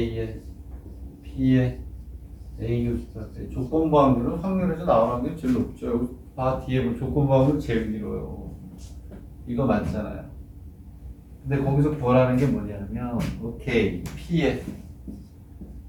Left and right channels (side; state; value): both; identical; correlation 1.00